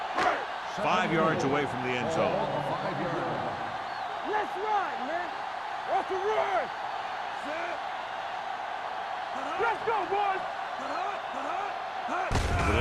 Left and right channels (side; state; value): both; identical; correlation 1.00